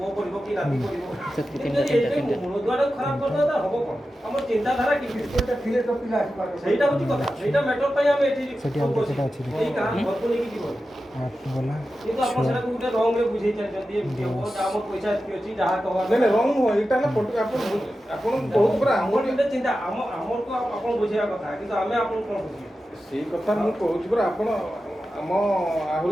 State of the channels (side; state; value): both; normal; correlation 0.92